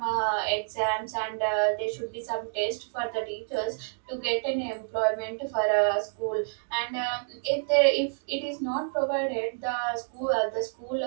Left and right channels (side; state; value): left; silent; digital silence